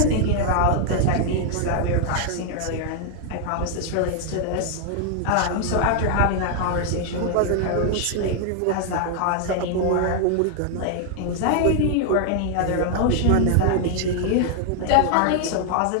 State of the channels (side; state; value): both; different; correlation 0.00